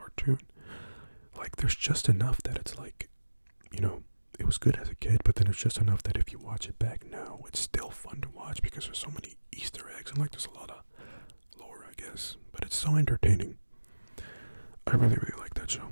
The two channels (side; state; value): both; inverted; correlation -1.00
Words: Like, there's just enough that it's like, you know, it was good as a kid, but then it's just enough that if you watch it back now, it's still fun to watch, because there's so many Easter eggs, and like there's a lot of lore, I guess, but it's so entertaining. I really like that